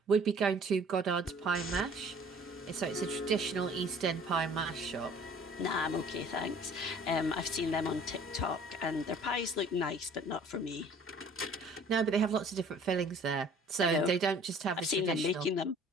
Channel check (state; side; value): normal; both; correlation 0.51